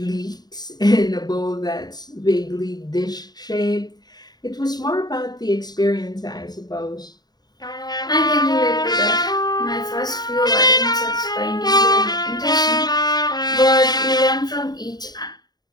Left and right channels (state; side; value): late; right; 0.20 ms